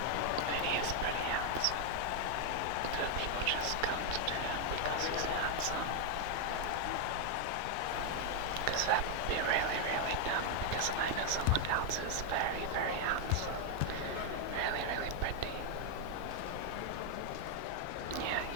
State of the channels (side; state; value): both; different; correlation 0.00